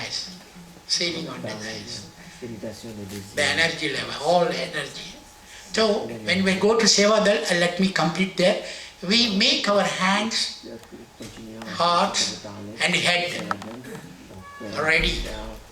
sealing on desires. The energy level, all energy. So, when we go to Sevadal, let me complete there, we make our hands, heart and head ready.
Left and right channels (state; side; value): identical; both; correlation 1.00